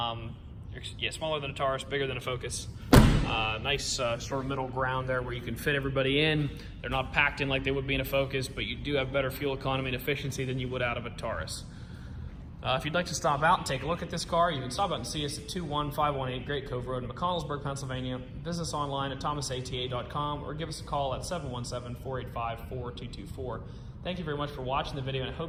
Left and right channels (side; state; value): both; identical; correlation 1.00